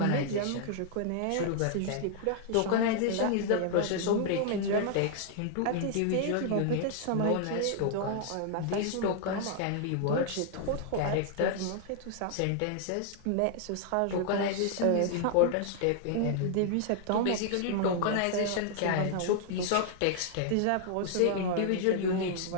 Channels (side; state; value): both; different; correlation 0.00